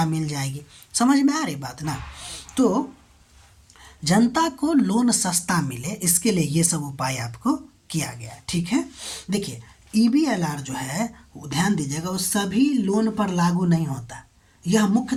मिल जाएगी। समझ में आ रही बात ना? तो जनता को लोन सस्ता मिले, इसके लिए ये सब उपाय आपको किया गया है, ठीक है। देखिए, EBLR जो है ध्यान दीजिएगा, वो सभी लोन पर लागू नहीं होता। यह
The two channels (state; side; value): identical; both; correlation 1.00